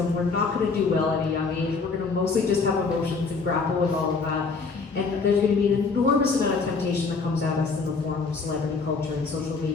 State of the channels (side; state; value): right; quieter; 4.5 dB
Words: We're not going to do well at a young age. We're going to mostly just have emotions and grapple with all of that. And there's going to be an enormous amount of temptation that comes at us in the form of celebrity culture and social